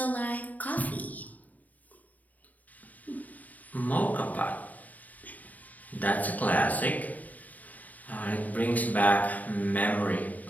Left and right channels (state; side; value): late; right; 0.076 ms